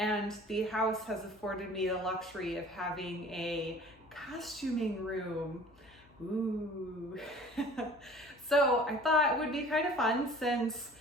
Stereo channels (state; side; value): noise; left; hum, 28 dB below the sound